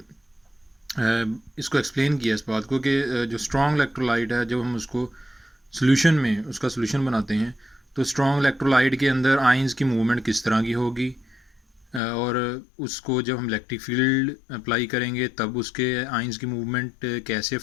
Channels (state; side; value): drops out; right; at 12.0 s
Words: इसको एक्सप्लेन किया इस बात को कि जो स्ट्रॉन्ग इलेक्ट्रोलाइट है, जब हम उसको सोल्यूशन में उसका सोल्यूशन बनाते हैं तो स्ट्रॉन्ग इलेक्ट्रोलाइट के अंदर आइंस की मूवमेंट किस तरह की होगी, और उसको जब हम इलेक्ट्रिक फील्ड अप्लाई करेंगे तब उसके आइंस की मूवमेंट कैसे